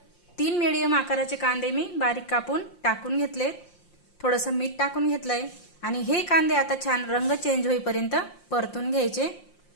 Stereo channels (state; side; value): late; right; 5.7 ms